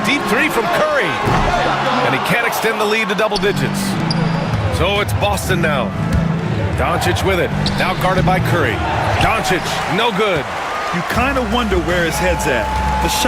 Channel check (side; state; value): both; identical; correlation 1.00